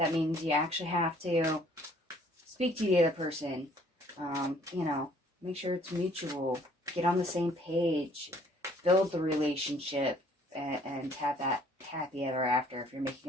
means you actually have to speak to the other person. You know, make sure it's mutual. Get on the same page. Build the relationship and have that happy ever after. If you're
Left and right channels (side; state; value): both; normal; correlation 0.59